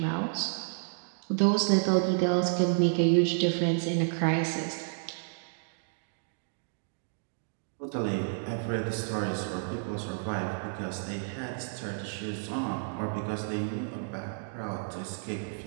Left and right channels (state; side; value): silent; left; digital silence